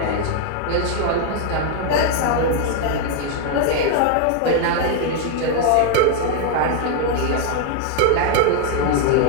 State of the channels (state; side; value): different; both; correlation 0.00